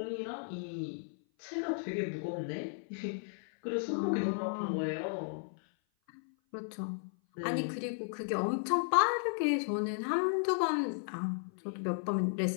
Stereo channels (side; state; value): right; silent; 55 dB below the other